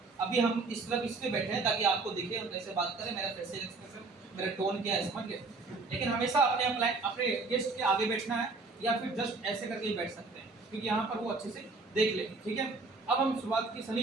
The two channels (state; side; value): quieter; left; 3.8 dB